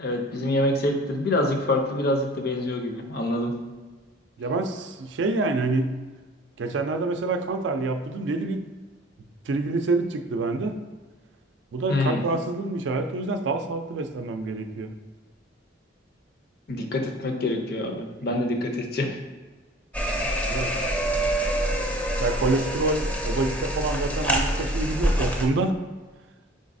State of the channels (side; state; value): both; normal; correlation 0.45